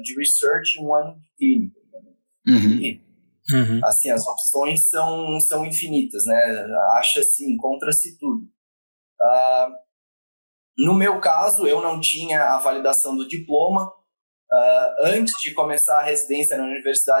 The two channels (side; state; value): both; inverted; correlation -1.00